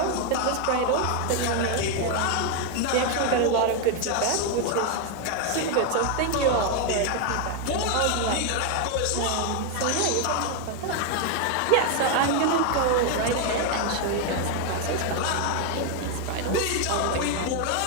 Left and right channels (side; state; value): both; different; correlation 0.01